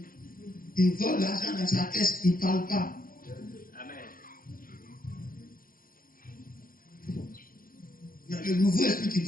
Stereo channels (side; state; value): right; late; 0.41 ms